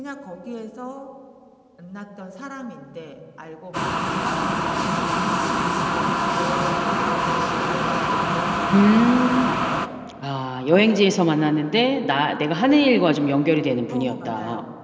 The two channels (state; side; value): identical; both; correlation 1.00